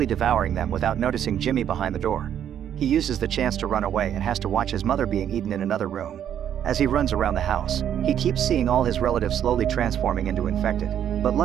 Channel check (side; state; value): left; quieter; 9.8 dB